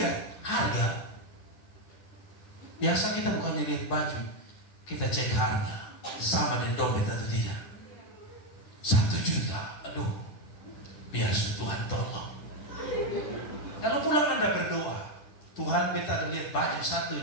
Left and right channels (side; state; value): right; late; 10 ms